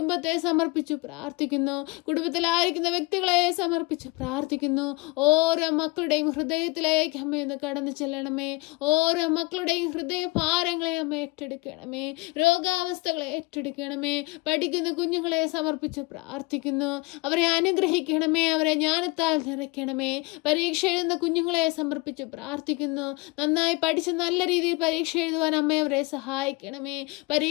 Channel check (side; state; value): right; quieter; 24.0 dB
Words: സമർപ്പിച്ചു പ്രാർത്ഥിക്കുന്നു. കുടുംബത്തിലായിരിക്കുന്ന വ്യക്തികളെ സമർപ്പിച്ചു പ്രാർത്ഥിക്കുന്നു. ഓരോ മക്കളുടെയും ഹൃദയത്തിലേക്ക് അമ്മയൊന്ന് കടന്നു ചെല്ലണമേ. ഓരോ മക്കളുടെയും ഹൃദയ ഭാരങ്ങളെ അമ്മ ഏറ്റെടുക്കണമേ. രോഗാവസ്ഥകളെ ഏറ്റെടുക്കണമേ. പഠിക്കുന്ന കുഞ്ഞുങ്ങളെ സമർപ്പിച്ച് പ്രാർത്ഥിക്കുന്നു. അവരെ അനുഗ്രഹിക്കണമേ. അവരെ ജ്ഞാനത്താൽ നിറയ്ക്കണമേ. പരീക്ഷ എഴുതുന്ന കുഞ്ഞുങ്ങളെ സമർപ്പിച്ച് പ്രാർത്ഥിക്കുന്നു. നന്നായി പഠിച്ച് നല്ല രീതിയിൽ പരീക്ഷ എഴുതുവാൻ അമ്മ അവരെ സഹായിക്കണമേ.